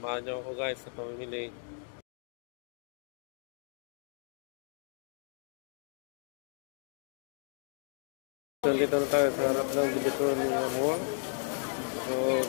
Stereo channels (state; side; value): silent; right; 55 dB below the other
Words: nyo ako guys sa pamimili. Dito na tayo sa harap ng Divisoria Mall. So